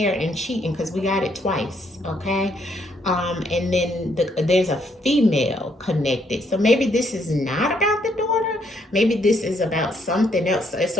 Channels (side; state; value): both; normal; correlation 0.71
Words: and cheating, because we got it twice, okay? And then there's a female connected. So maybe this is not about the daughter. Maybe this is about something else.